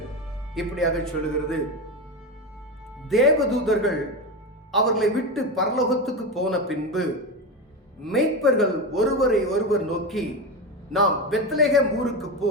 இப்படியாக சொல்லுகிறது. தேவதூதர்கள் அவர்களை விட்டு பரலோகத்துக்கு போன பின்பு மேய்ப்பர்கள் ஒருவரை ஒருவர் நோக்கி, நாம் பெத்லகேம் ஊருக்கு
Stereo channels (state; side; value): normal; both; correlation 0.18